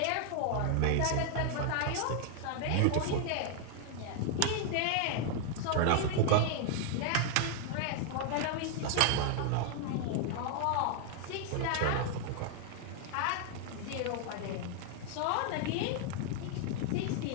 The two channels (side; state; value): both; different; correlation 0.00